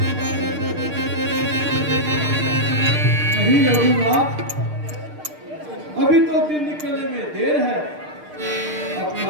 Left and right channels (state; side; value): late; left; 6.6 ms